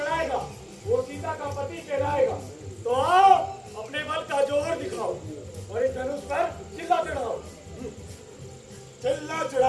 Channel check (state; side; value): identical; both; correlation 1.00